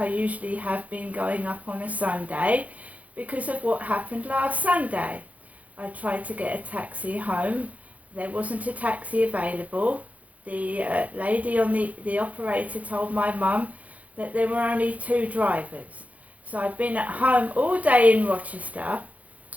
usually have been going up on a Sunday because of what happened last Sunday. I tried to get a taxi home. There wasn't a taxi available. The lady on the operator told my mum that there were only 2 drivers. So I've been at home all day in Rochester,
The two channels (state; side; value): late; left; 0.071 ms